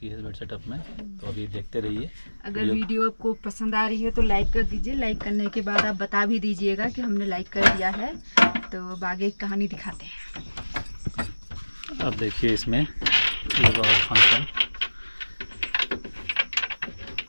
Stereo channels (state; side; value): inverted; both; correlation -1.00